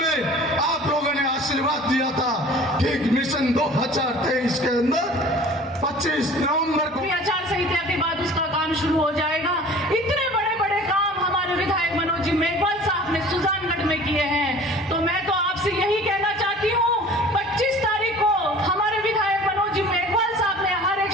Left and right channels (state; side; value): normal; both; correlation 0.45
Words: आप लोगों ने आशीर्वाद दिया था, ठीक मिशन 2023 के अंदर 25 नवंबर को आचार संहिता के बाद उसका काम शुरू हो जाएगा। इतने बड़े बड़े काम हमारे विधायक मनोज जी मेघवाल साहब ने सुजानगढ़ में किए हैं, तो मैं तो आपसे यही कहना चाहती हूँ 25 तारीख को हमारे विधायक मनोज जी मेघवाल साहब ने हर एक